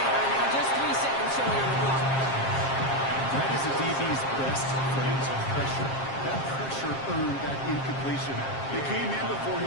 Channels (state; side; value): late; right; 7.5 ms